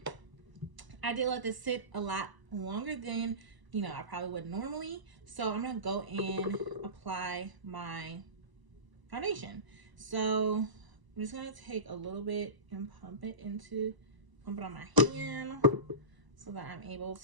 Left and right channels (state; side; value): late; left; 1.0 ms